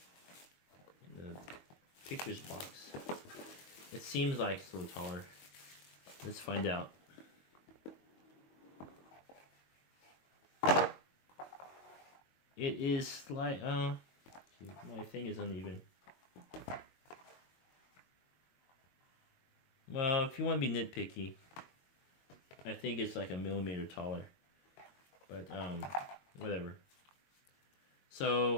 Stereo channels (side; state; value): right; late; 22 ms